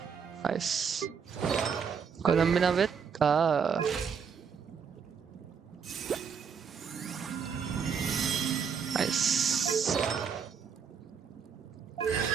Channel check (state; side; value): quieter; left; 6.5 dB